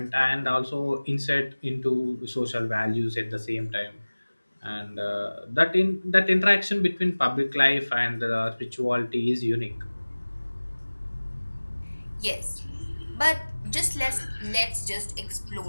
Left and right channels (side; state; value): both; inverted; correlation -1.00